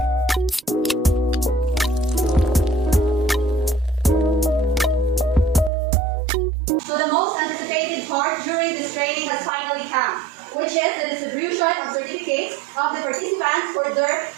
training has finally come, which is the distribution of certificates of the participants for their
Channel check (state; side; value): drops out; left; at 5.7 s